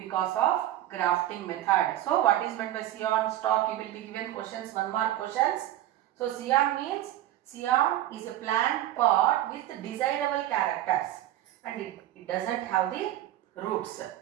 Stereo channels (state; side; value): quieter; left; 13.5 dB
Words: of grafting method. So what is meant by scion, stalk? You will be given questions, 1 mark questions. So scion means, scion is a plant part with desirable characters and it doesn't have the roots.